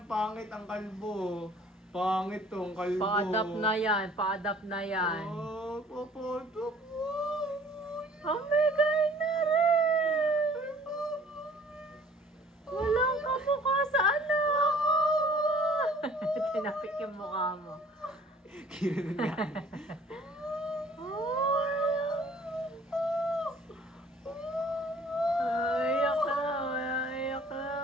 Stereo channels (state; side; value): normal; both; correlation 0.53